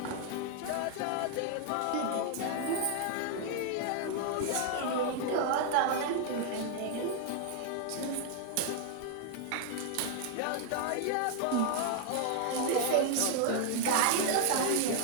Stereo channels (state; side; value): different; both; correlation 0.00